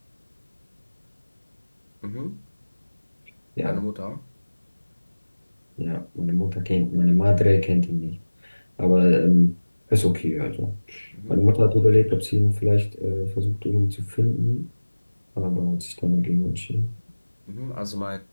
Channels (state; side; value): inverted; both; correlation -1.00